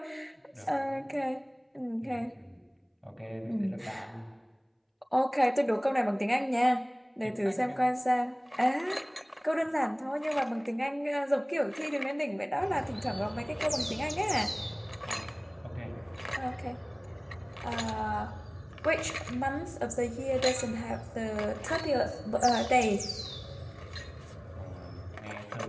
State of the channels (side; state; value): both; identical; correlation 1.00